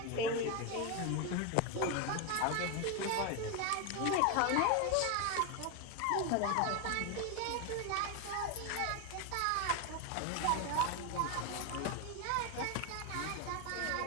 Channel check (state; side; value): different; both; correlation 0.02